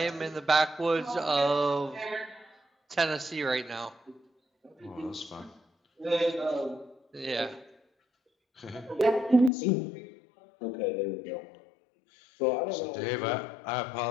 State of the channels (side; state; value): right; drops out; at 9.5 s